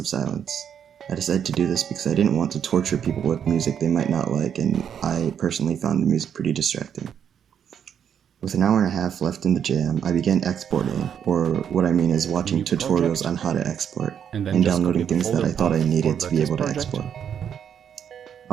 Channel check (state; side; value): quieter; left; 8.4 dB